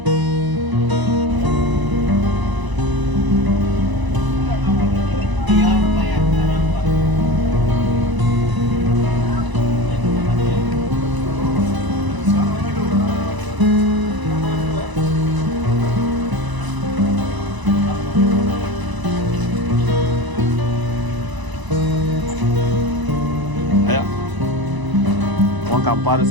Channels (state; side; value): late; left; 1.0 ms